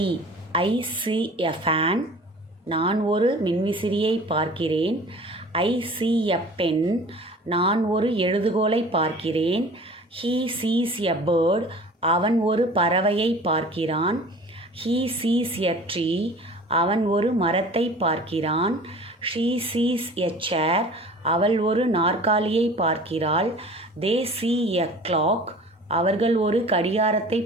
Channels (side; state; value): both; normal; correlation 0.44